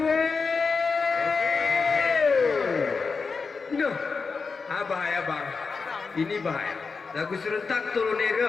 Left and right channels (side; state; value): right; quieter; 4.7 dB